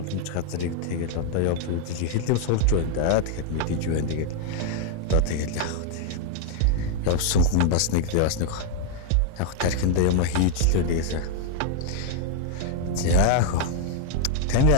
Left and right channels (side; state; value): both; different; correlation 0.00